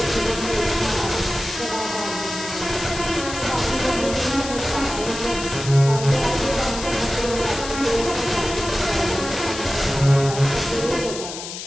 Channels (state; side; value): noise; left; hiss, 9 dB below the sound